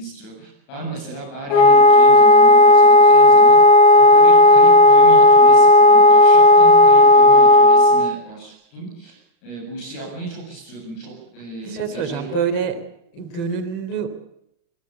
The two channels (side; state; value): right; late; 36 ms